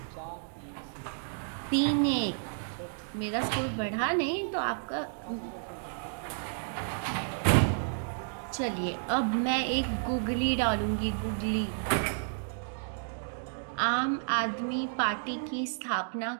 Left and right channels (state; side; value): silent; left; digital silence